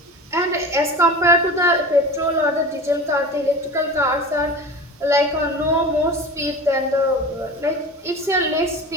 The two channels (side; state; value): both; normal; correlation 0.33